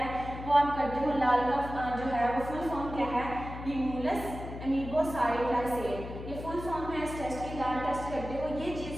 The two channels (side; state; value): left; noise; hum, 10 dB below the sound